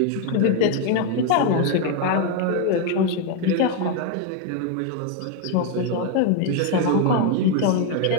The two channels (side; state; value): both; different; correlation 0.01